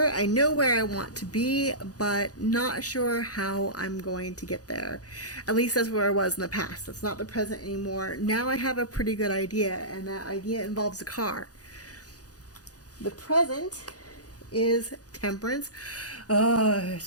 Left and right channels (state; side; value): late; right; 0.67 ms